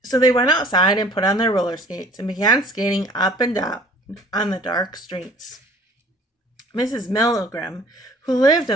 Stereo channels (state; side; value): normal; both; correlation 0.52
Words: So they went outside and put on their roller skates and began skating up and down on the dark streets. Mrs. Milgram, who lived